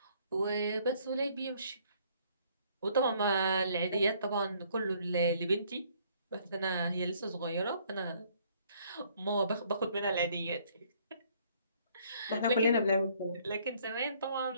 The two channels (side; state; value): both; inverted; correlation -0.63